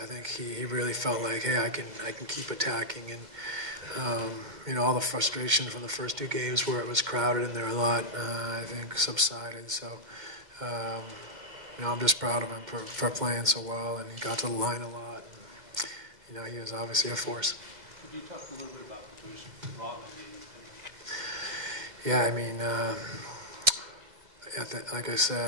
think he really felt like, hey, I can keep attacking. And all the frustration from the first two games where it was crowded and there a lot, I think subsided. So I'm just proud of him for playing so well, and he got to the line a lot. And, he was obviously a force. Could you talk a little bit about the boost Robin gave you? Yeah, I mean, like I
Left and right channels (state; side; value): late; left; 2.1 ms